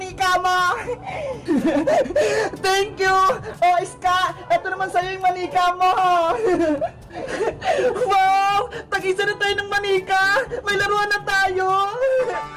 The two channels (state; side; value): identical; both; correlation 1.00